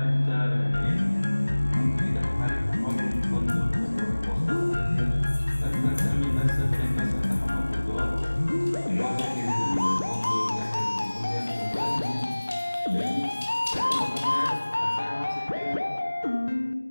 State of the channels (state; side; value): inverted; both; correlation -1.00